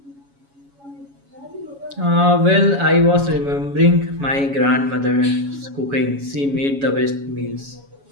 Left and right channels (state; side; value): late; left; 7.2 ms